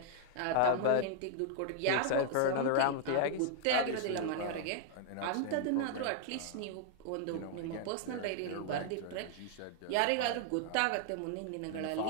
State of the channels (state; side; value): different; both; correlation 0.00